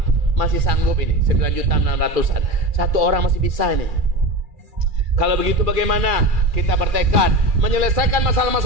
masih sanggup ini 9.600.000-an. Satu orang masih bisa ini. Kalau begitu bagaimana kita bertekad menyelesaikan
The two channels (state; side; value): late; left; 2.4 ms